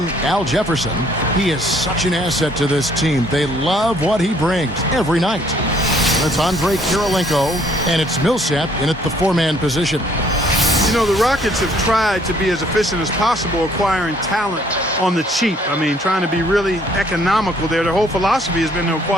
Al Jefferson. He is such an asset to this team. They love what he brings every night. That's Andre Kirilenko, and it's Millsap in at the four-man position. You know, the Rockets have tried to be as efficient as possible acquiring talent on the cheap. I mean, trying to be really economical there. Their whole philosophy has been to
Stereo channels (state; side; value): normal; both; correlation 0.62